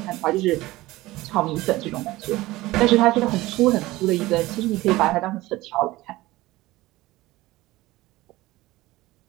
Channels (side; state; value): left; quieter; 18.5 dB